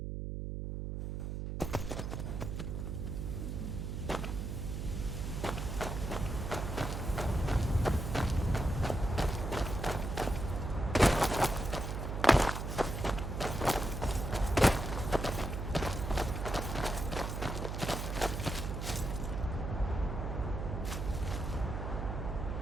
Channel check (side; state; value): right; noise; hum, 4 dB below the sound